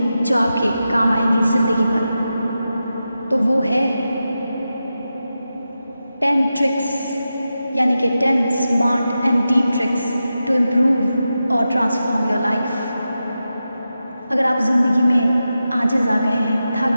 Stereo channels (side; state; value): both; inverted; correlation -0.91